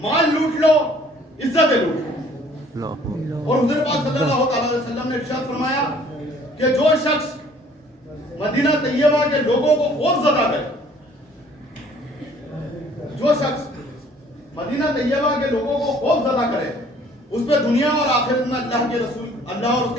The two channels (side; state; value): both; normal; correlation 0.56